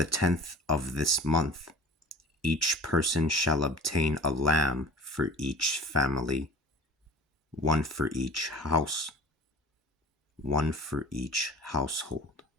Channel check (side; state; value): both; normal; correlation 0.42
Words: 10th of this month, each person shall obtain a lamb for each family, one for each house, one for each household.